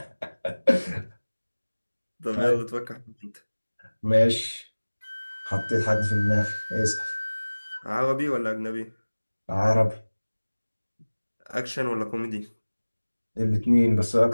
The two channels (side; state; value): both; inverted; correlation -1.00